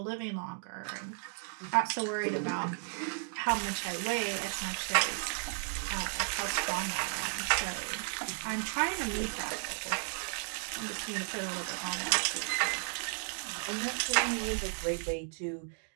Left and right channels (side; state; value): left; silent; 55 dB below the other